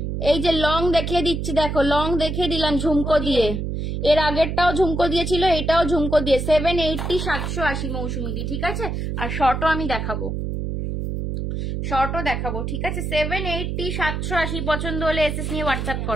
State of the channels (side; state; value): right; noise; hum, 3 dB below the sound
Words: এই যে লং দেখিয়ে দিচ্ছি, দেখো লং দেখিয়ে দিলাম ঝুমকো দিয়ে, এর আগেরটাও ঝুমকো দিয়েছিল, এটাও ঝুমকো দিয়ে 780 780 মৌসুমি দি, ঠিক আছে। আর শর্টও আমি দেখাবো, শর্টও দেখাবো, ঠিক আছে। 780 780 পছন্দ হলে এসএস নিয়ে হোয়াটসঅ্যাপ